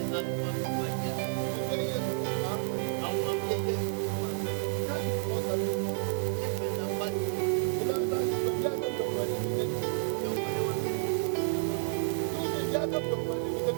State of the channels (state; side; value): silent; left; 57 dB below the other